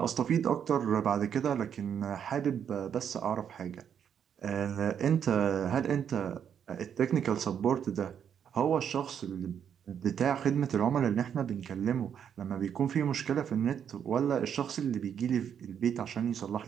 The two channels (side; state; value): left; quieter; 8.4 dB